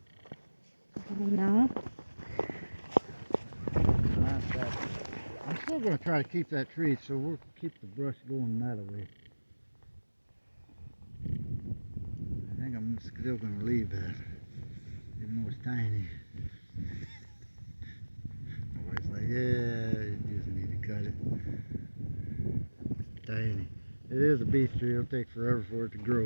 No. Not that. I'm still going to try to keep that tree, so we'll keep the brush going that way. I think I'm I'm still gonna leave that, even though it's tiny. My wife's like, yeah, you just need to cut it. It's tiny. It is a beech tree. It'll take forever for it to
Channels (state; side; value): inverted; both; correlation -1.00